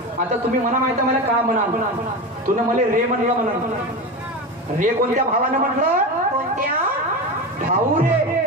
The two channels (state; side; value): normal; both; correlation 0.23